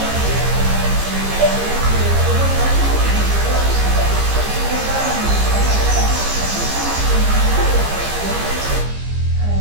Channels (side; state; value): left; late; 15 ms